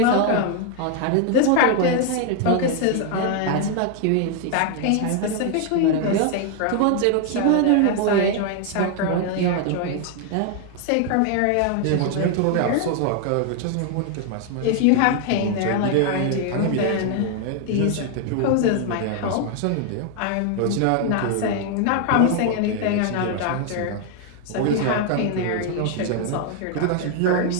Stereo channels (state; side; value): different; both; correlation 0.00